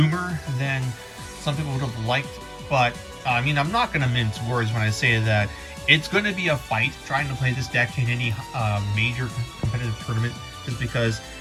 than some people would have liked, but I mean, I'm not going to mince words when I say that it's going to be a fight trying to play this deck in any major competitive tournament, just because,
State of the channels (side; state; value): both; identical; correlation 1.00